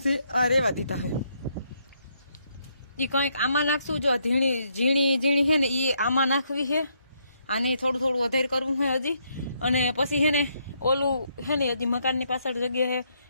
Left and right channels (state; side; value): inverted; both; correlation -0.74